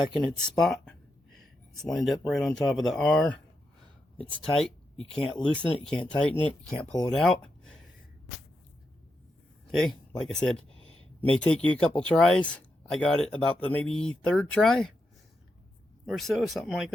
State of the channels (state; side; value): normal; both; correlation 0.85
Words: in its spot. It's lined up right on top of the R. It's tight. You can't loosen it. You can't tighten it. You can't pull it out. Okay, like I said, may take you a couple tries. I got it about the maybe third try or so, something like